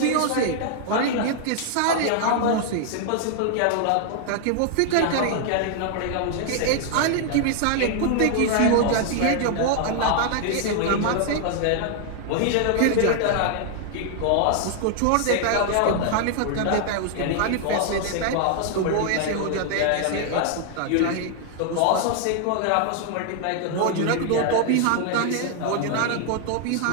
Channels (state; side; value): different; both; correlation 0.00